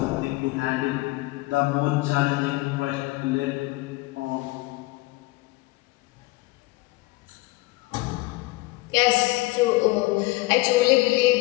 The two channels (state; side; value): quieter; right; 21.4 dB